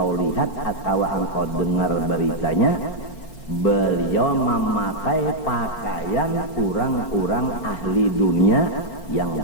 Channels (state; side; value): late; right; 5.4 ms